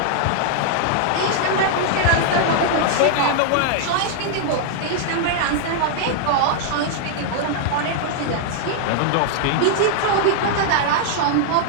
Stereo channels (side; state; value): both; different; correlation -0.01